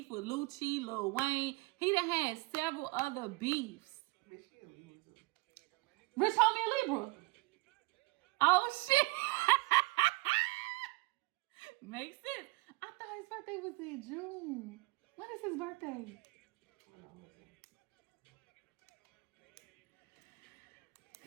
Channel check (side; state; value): left; quieter; 24.3 dB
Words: with Lucci, Lil Wayne. He done had several other beefs. Rich Homie a Libra. Oh, shit. Makes sense. I thought his birthday was in June. When is his birthday?